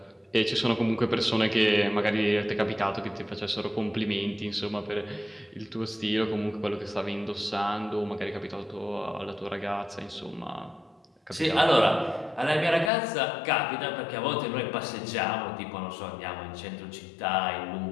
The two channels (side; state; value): right; drops out; at 12.9 s